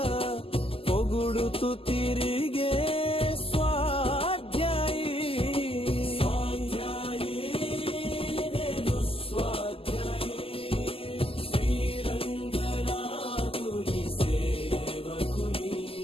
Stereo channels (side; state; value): right; late; 0.27 ms